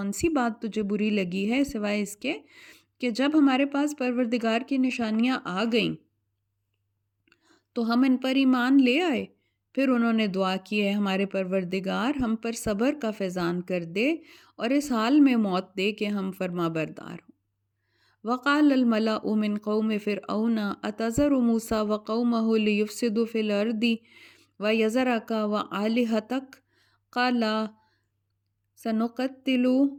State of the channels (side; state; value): both; identical; correlation 1.00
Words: سی بات تجھے بری لگی ہے سوائے اس کے کہ جب ہمارے پاس پروردگار کی نشانیاں آ گئیں تو ہم ان پر ایمان لے آئے۔ پھر انہوں نے دعا کی ہے ہمارے پروردگار ہم پر صبر کا فیضان کر دے اور اس حال میں موت دے کہ ہم فرما بردار ہوں۔ وقال الملأ من قوم فرعون أتذر موسى وقومه ليفسدوا في الأرض ويذرك وآلهتك قال سنقتل